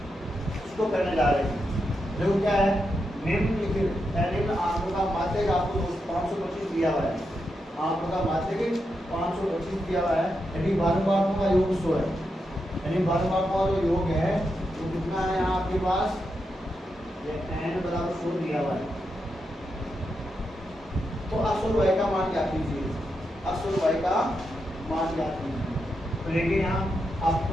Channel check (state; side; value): normal; both; correlation 0.85